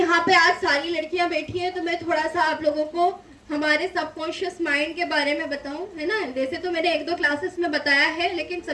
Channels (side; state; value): both; identical; correlation 1.00